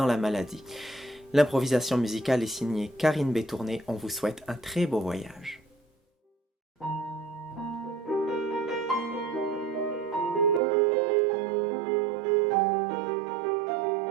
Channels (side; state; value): left; drops out; at 10.6 s